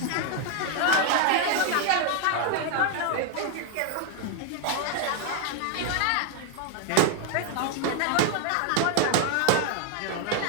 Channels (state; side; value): different; both; correlation 0.00